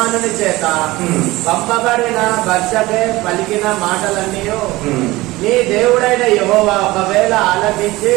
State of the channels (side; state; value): left; quieter; 19.6 dB